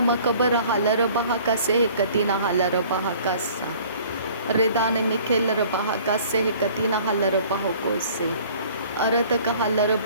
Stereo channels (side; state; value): both; inverted; correlation -0.51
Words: मकबर हालर बाहकासे कतीना हालर बाहकासा रेदान मिखेलर बाहकासे कतीना हालर बाहकोसे अरतक हालर